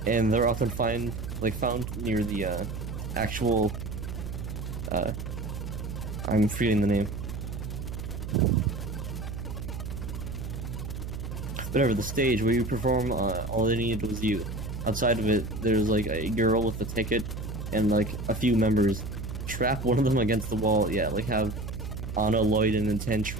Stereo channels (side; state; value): right; noise; hum, 6 dB below the sound